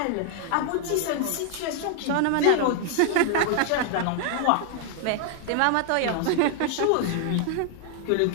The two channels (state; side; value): different; both; correlation 0.00